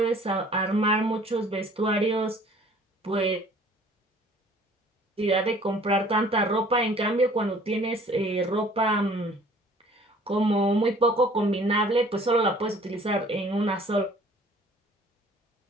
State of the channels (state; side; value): normal; both; correlation 0.53